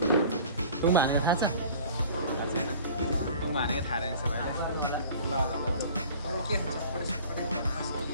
तुम्बा हानेको थाहा छ छैन तुम्बा हानेको थाहा रहेछ भाइले ल के हुन्छ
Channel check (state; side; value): inverted; both; correlation -0.45